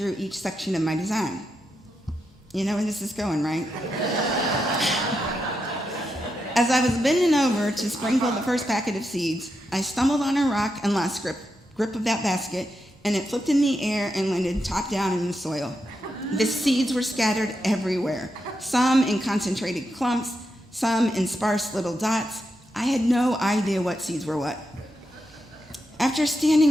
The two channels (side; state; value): both; normal; correlation 0.85